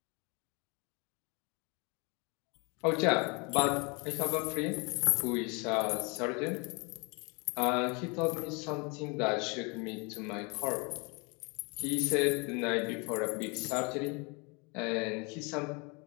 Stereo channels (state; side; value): quieter; right; 30.9 dB